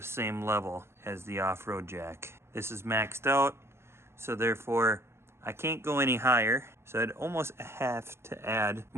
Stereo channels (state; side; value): late; left; 0.12 ms